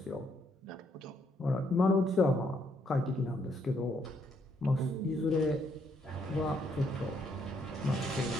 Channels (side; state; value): both; normal; correlation 0.72